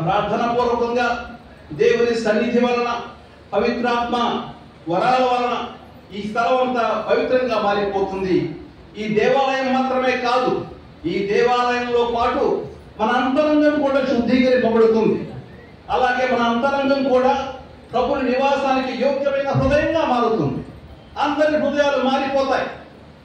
ప్రార్థన పూర్వకంగా దేవుని సన్నిధి వలన, పవిత్రాత్మ వరాల వలన ఈ స్థలం అంతా పవిత్రంగా మారిపోతుంది. ఈ దేవాలయం మాత్రమే కాదు, ఈ దేవాలయంలో పాటు మన అంతరంగం కూడా శుద్ధీకరింపబడుతుంది. అలాగే మన అంతరంగం కూడా ప్రభుని నివాసానికి యోగ్యమైన హృదయంగా మారుతుంది. అందరి హృదయాలు మారిపోతాయి.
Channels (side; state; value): both; identical; correlation 1.00